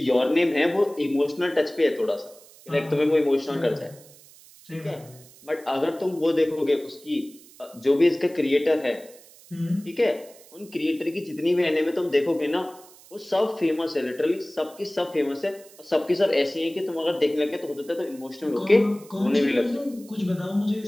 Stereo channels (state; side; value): noise; right; hiss, 23 dB below the sound